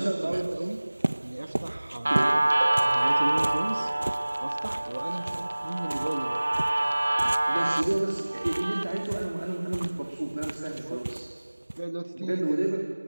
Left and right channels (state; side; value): inverted; both; correlation -1.00